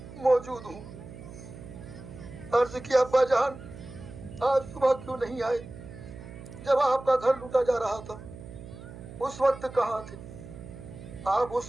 موجود ہوں. عرض کیا, ابا جان آج صبح کیوں نہیں آئے؟ جب آپ کا گھر لوٹا جا رہا تھا اس وقت کہاں تھے؟ آپ اس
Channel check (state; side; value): noise; right; hum, 14 dB below the sound